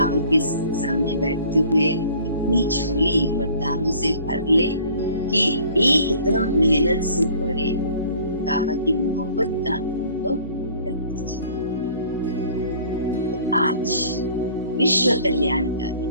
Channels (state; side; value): inverted; both; correlation -0.52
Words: के सामने बैठते हुए इतनी झोली वरदानों से भर ले कि एकदम मेहनत से परे बाबा की मोहब्बत का अनुभव कर दीजिए। तो आज विश्व कल्याणकारी,